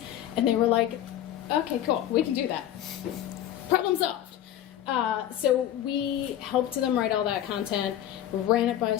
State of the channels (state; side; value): quieter; right; 11.8 dB